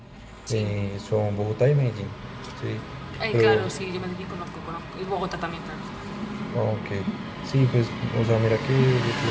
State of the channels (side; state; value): both; identical; correlation 1.00